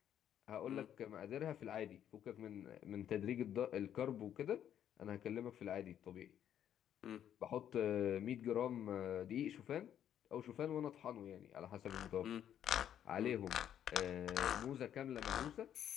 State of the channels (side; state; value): right; quieter; 10.1 dB